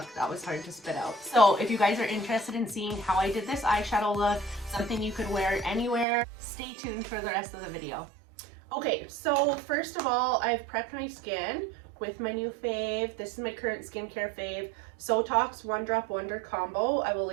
That was hard to spit out. So if you guys are interested in seeing how I did this eyeshadow look, something you could wear anywhere, stay tuned for the rest of the video. Okay, so first of all, I've prepped my skin with my new fave. This is my current skincare fave, Sotoks One Drop Wonder Combo. I will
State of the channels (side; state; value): left; drops out; at 6.1 s